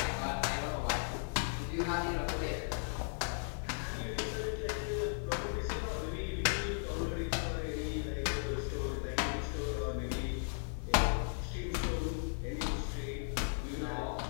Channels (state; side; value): silent; right; 53 dB below the other